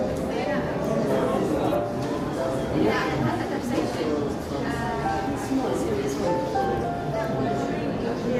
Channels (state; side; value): identical; both; correlation 1.00